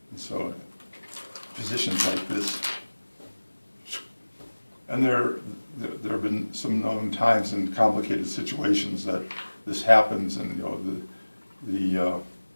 And so positions like this, and there have been some known times in complicated situations that this happens, and the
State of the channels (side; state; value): both; inverted; correlation -1.00